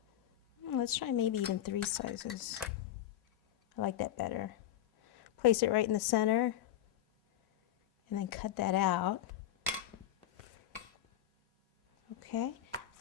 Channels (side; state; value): right; quieter; 11.9 dB